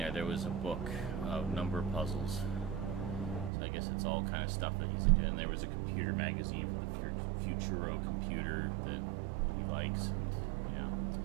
was a book of number puzzles. So I guess it's all kind of stuff that he's into. And there was a computer magazine for the Futuro computer that he likes. And, yeah,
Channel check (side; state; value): left; drops out; at 3.5 s